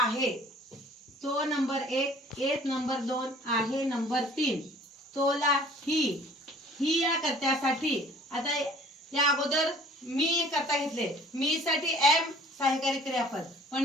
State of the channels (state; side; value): normal; both; correlation 0.52